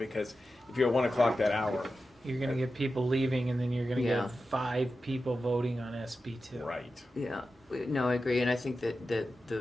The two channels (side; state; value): both; normal; correlation 0.92